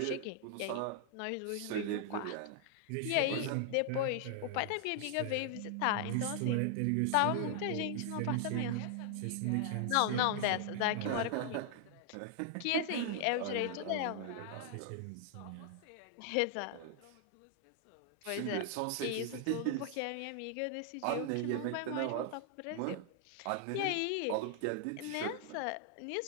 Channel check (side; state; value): both; different; correlation 0.00